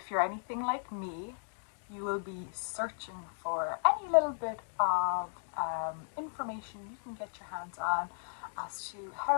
you're anything like me, you will be searching for any little bit of information you can get your hands on as to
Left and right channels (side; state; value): right; silent; digital silence